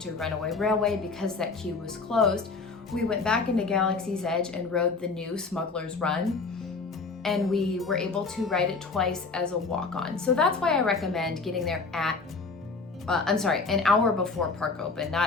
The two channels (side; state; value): right; quieter; 4.2 dB